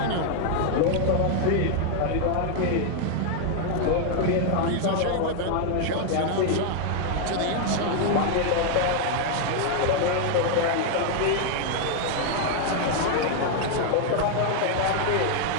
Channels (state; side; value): different; both; correlation 0.00